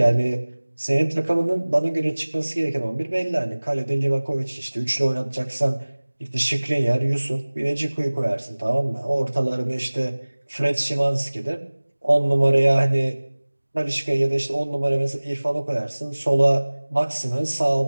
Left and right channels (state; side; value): inverted; both; correlation -1.00